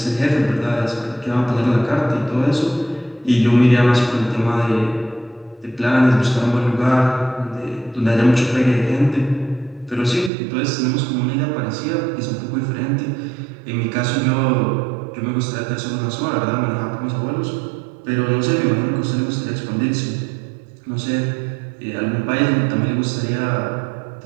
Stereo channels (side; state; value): left; drops out; at 10.3 s